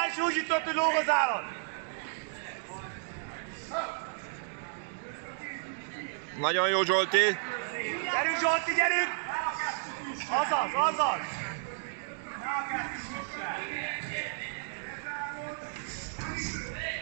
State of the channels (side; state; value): left; silent; digital silence